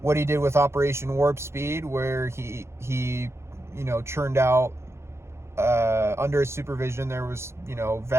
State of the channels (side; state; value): left; late; 0.13 ms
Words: What he did with Operation Warp Speed, where he churned out, under his supervision, there was,